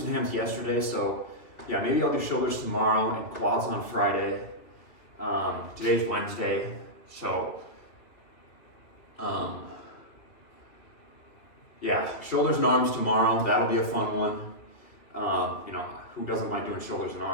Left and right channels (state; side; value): late; right; 2.9 ms